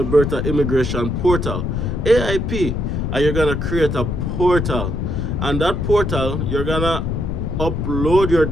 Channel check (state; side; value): noise; left; rumble, 1 dB below the sound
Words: Immigration Portal, AIP, and you're gonna create a portal. And that portal, you're gonna upload your